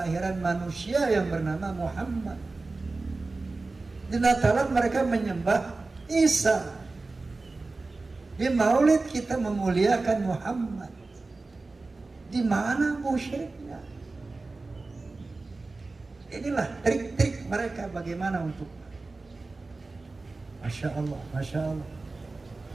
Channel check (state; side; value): quieter; left; 3.5 dB